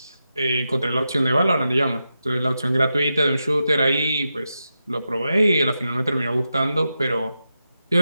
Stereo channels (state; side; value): inverted; both; correlation -0.89